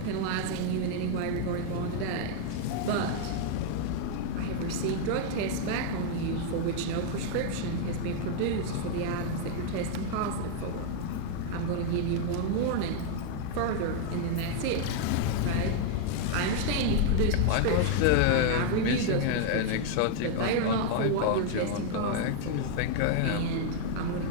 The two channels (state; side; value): different; both; correlation 0.00